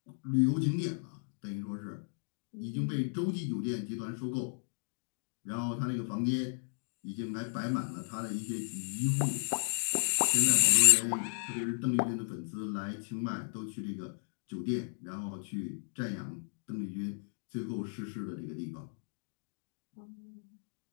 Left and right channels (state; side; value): silent; right; digital silence